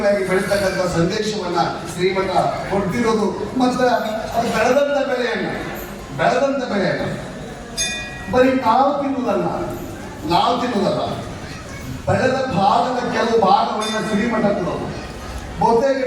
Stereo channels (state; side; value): identical; both; correlation 1.00